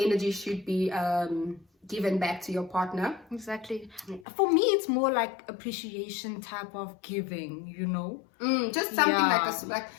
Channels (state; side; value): drops out; right; at 4.2 s